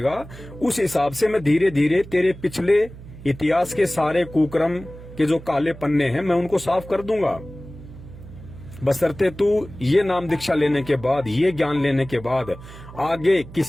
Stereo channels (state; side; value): noise; right; hum, 16 dB below the sound